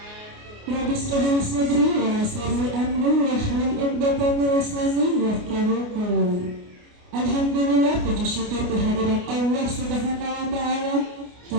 Rabbi shrah li sadri wa yassir li amri wahlul 'uqdatam min lisani yafqahu qawli. Alhamdulillah, puji syukur kehadirat Allah Subhanahu wa taala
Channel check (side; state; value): left; late; 29 ms